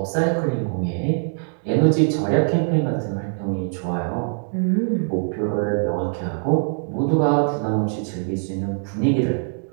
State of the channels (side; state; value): left; silent; 64 dB below the other